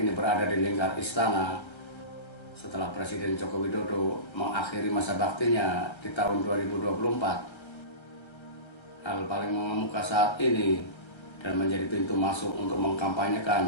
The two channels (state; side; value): late; right; 1.3 ms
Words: berada di lingkar istana setelah Presiden Joko Widodo mengakhiri masa baktinya di tahun 2024? Hal paling mengemuka saat ini dan menjadi pintu masuk untuk